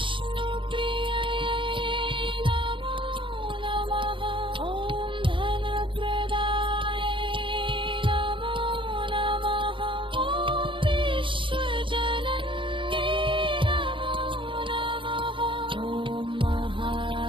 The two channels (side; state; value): left; late; 0.24 ms